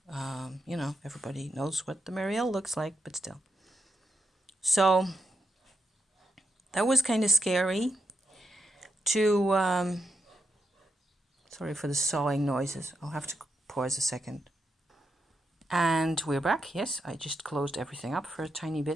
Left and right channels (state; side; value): normal; both; correlation 0.86